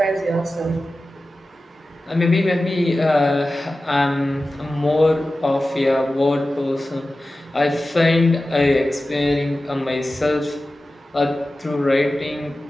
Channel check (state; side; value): normal; both; correlation 0.95